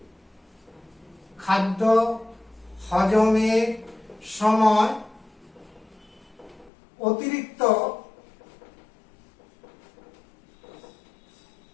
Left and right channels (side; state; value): right; drops out; at 6.7 s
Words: খাদ্য হজমের সময় অতিরিক্ত